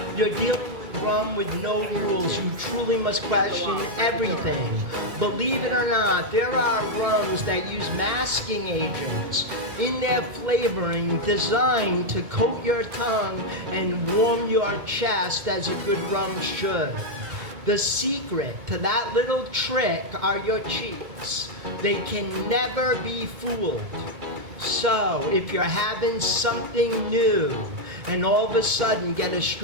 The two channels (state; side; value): late; left; 2.2 ms